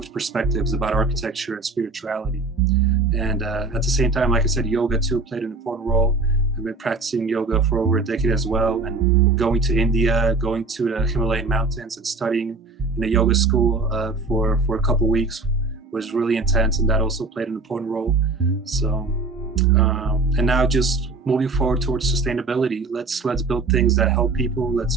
perspectives about architecture and spirituality. And at the same time, like I said, yoga too played an important role. I've been practicing yoga for over a decade as well, and going to India, going to the Himalayan mountains and studying in a yoga school for a couple of weeks was really intense, and that also played an important role. So, and now just moving forward towards sustainability. Let's build things that help people. Let's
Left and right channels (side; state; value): left; quieter; 3.5 dB